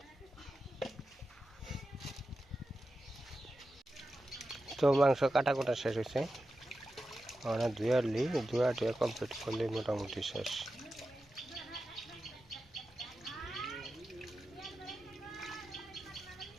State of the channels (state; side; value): normal; both; correlation 0.91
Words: তো মাংস কাটা কোটা শেষ হয়েছে, ধুয়া কমপ্লিট করলে মোটামুটি শেষ।